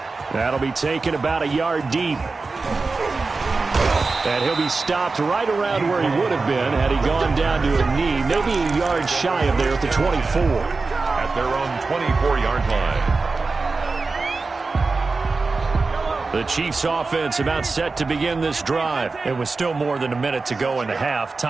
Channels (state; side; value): quieter; left; 4.0 dB